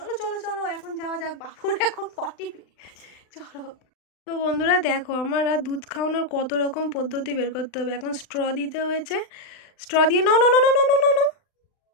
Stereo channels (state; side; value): late; right; 39 ms